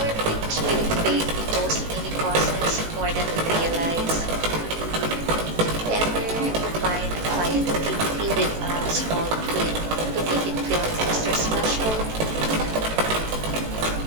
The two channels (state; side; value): late; left; 18 ms